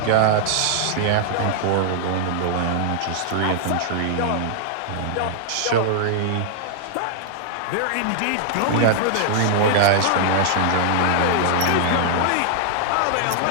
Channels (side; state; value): both; different; correlation -0.01